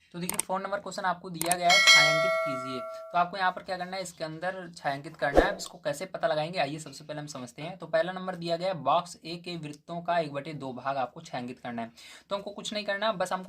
तो देखिए 4 नंबर क्वेश्चन आपको दिया गया है छायांकित कीजिए। तो आपको यहाँ पर क्या करना है, इसके अंदर छायांकित करना है। इसको कैसे पता लगाएंगे आइए सबसे पहले हम समझते हैं। तो पहला नंबर दिया गया है बॉक्स ए के वृत्तों का 1/2 भाग आपको छायांकित करना है। तो हमको कुछ नहीं करना, बस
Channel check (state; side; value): identical; both; correlation 1.00